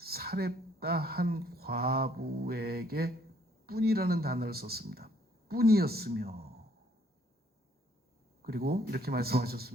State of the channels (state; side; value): normal; both; correlation 0.65